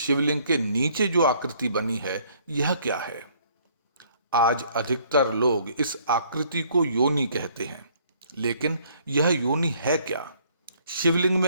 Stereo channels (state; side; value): inverted; both; correlation -0.62